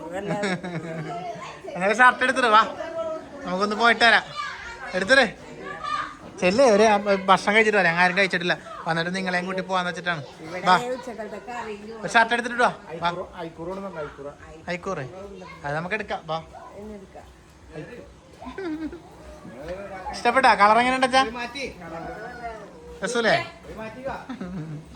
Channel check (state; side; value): identical; both; correlation 1.00